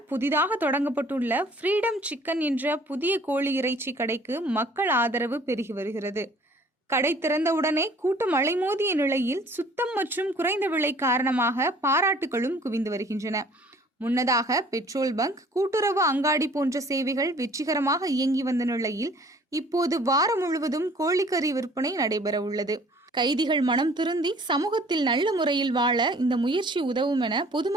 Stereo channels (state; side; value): normal; both; correlation 0.54